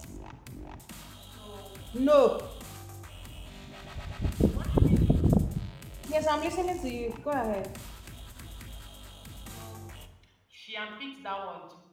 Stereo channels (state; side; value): identical; both; correlation 1.00